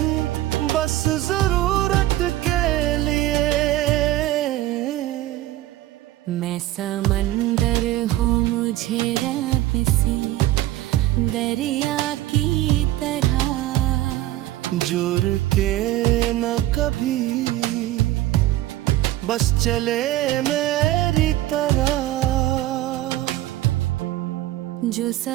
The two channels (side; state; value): left; quieter; 15.3 dB